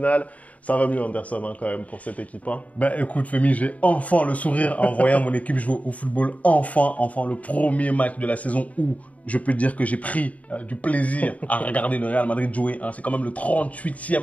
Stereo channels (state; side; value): late; right; 0.069 ms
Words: Ça va mieux Anderson quand même pour cette équipe. Ben écoute Femi, j'ai enfin le sourire en voyant mon équipe jouer au football. Enfin le premier match de la saison où je peux dire que j'ai pris du plaisir à regarder le Real Madrid jouer. C'est quand même le